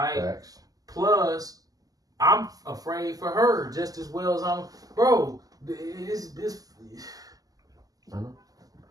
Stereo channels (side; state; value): left; late; 0.18 ms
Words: Facts. Plus, I'm afraid for her just as well as I'm, bro. This.